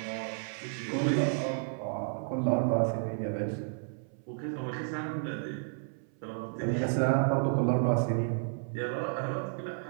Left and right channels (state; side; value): silent; left; 57 dB below the other